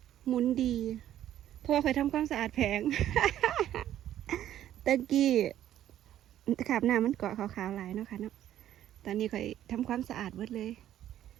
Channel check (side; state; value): left; quieter; 11.8 dB